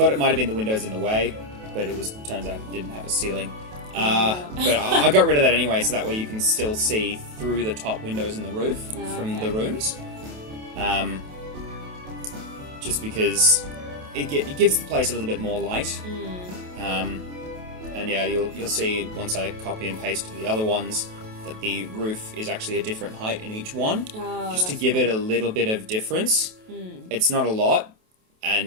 it might have been the windows in the way, but turns out it didn't have a ceiling. But I got rid of that anyway, so that way you can still see through the top windows in the roof from the rooms. Just because it gives the place a little bit more light. And yeah, you'll see once I copy and paste to the other ones that the roof is actually a different height in each one, just to give it a little bit of difference. It's not a lot,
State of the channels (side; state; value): left; late; 28 ms